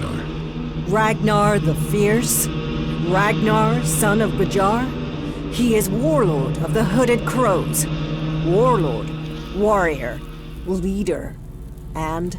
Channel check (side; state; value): both; identical; correlation 1.00